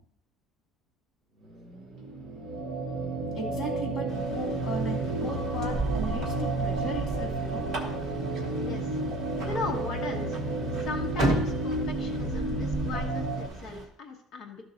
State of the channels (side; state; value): both; normal; correlation 0.42